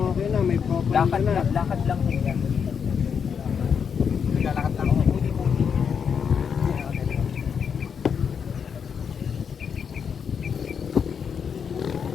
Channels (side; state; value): right; quieter; 6.8 dB